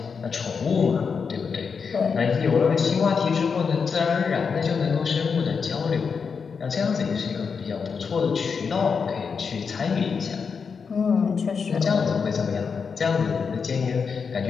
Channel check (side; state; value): right; quieter; 5.7 dB